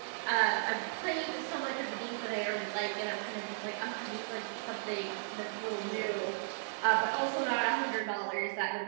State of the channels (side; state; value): left; silent; digital silence